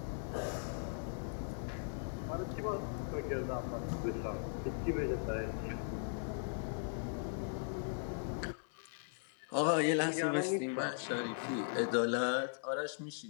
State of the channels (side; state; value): right; silent; 52 dB below the other